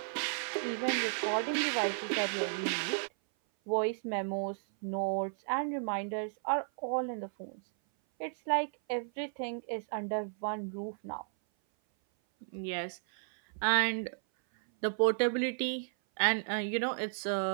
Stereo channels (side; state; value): left; silent; 55 dB below the other